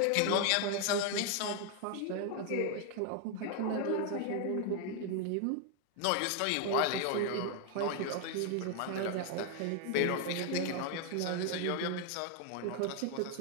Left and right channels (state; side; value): different; both; correlation 0.00